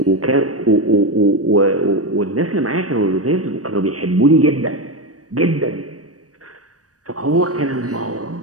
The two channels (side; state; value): left; late; 0.66 ms